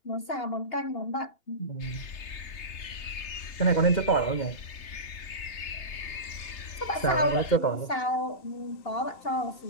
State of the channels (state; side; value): late; right; 3.3 ms